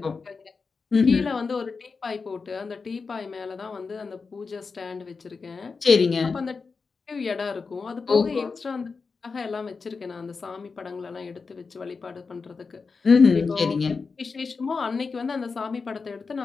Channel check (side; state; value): right; quieter; 4.7 dB